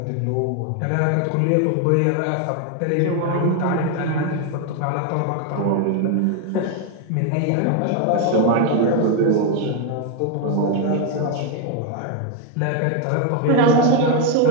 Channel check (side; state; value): both; different; correlation 0.01